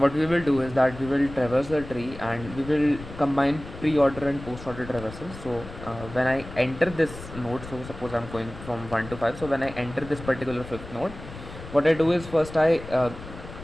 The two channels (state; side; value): noise; left; rumble, 13 dB below the sound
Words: we will do is that we will traverse the tree and we will combine pre-order and post-order traversal. So when I enter this node, so suppose I'm going from 1 to 5, so when I enter this particular fifth node, what I do is first I